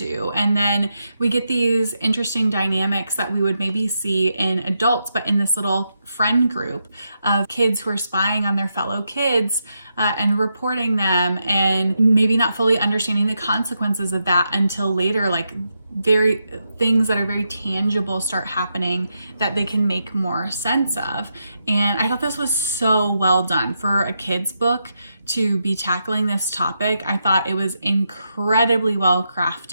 And then we get these interesting dynamics that we would maybe see in adults, but in this little friend group of kids who are spying on their fellow kids and reporting them, and maybe not fully understanding the consequences of that until later, like very things that are very tangible start happening that they can make more sense of. And I thought this was so well done for a kid's book to be tackling this topic. I thought it was incredibly well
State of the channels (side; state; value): both; inverted; correlation -0.84